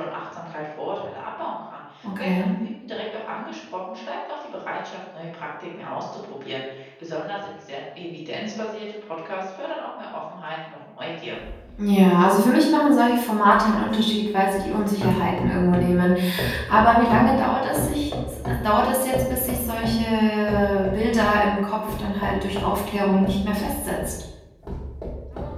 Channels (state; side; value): identical; both; correlation 1.00